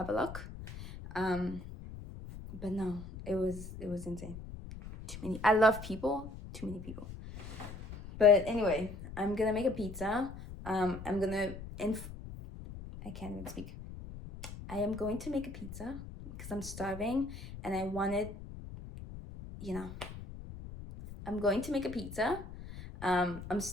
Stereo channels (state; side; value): noise; left; rumble, 12 dB below the sound